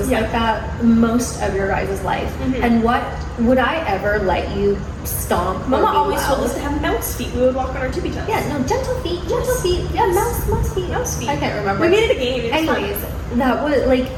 Yeah. like that most of your guys' life, Mhm. and what would I ever let you stomp? or Mama be always loud? told us to have mouse feet. We would walk on our tippy toes. Yeah, no, gentle feet, gentle Yes. feet. Yeah, Yes. mouse feet. Mouse feet. I can't remember. We made it a game. It was fun. Anyways, that was like,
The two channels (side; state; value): both; identical; correlation 1.00